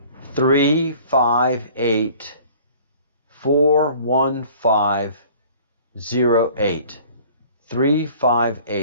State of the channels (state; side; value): inverted; both; correlation -0.50